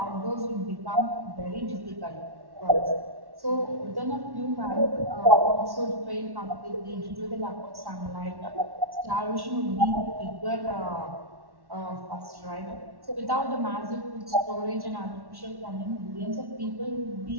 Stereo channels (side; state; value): left; late; 1.1 ms